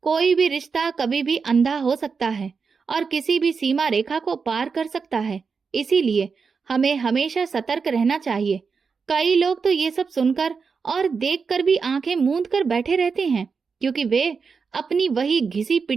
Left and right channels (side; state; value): left; quieter; 5.3 dB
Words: कोई भी रिश्ता कभी भी अंधा हो सकता है और किसी भी सीमा रेखा को पार कर सकता है। इसीलिए हमें हमेशा सतर्क रहना चाहिए। कई लोग तो ये सब सुनकर और देखकर भी आंखें मूंद कर बैठे रहते हैं, क्योंकि वे अपनी वही घिसी